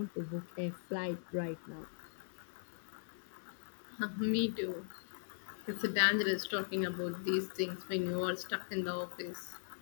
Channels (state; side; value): silent; right; digital silence